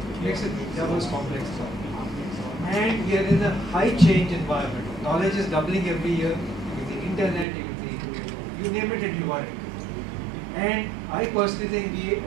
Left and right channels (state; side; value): drops out; left; at 7.5 s